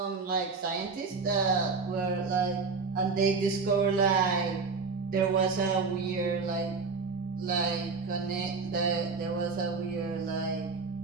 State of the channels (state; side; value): quieter; left; 4.6 dB